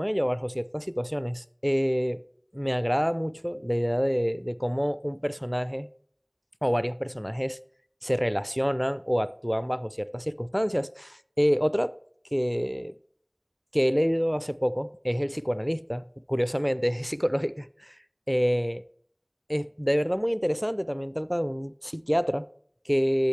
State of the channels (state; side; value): identical; both; correlation 1.00